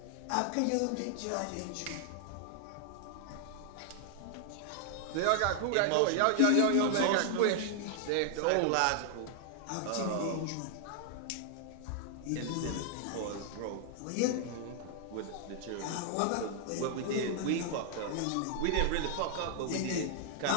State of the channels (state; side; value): different; both; correlation 0.00